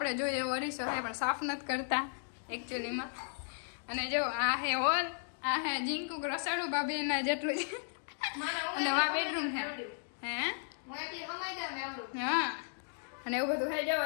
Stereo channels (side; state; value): right; silent; digital silence